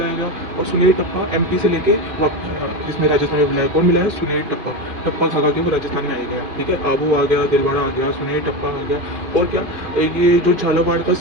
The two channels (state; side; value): late; left; 2.5 ms